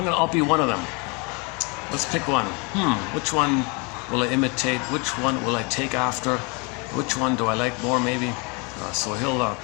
be one of them. Let's pick one. Which one will I imitate? Which one will I take after? Which one do I like more, maybe? So he'll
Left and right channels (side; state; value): right; quieter; 31.2 dB